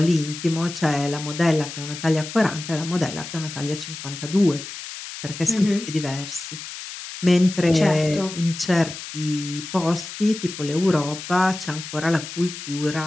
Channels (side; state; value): left; noise; hiss, 10 dB below the sound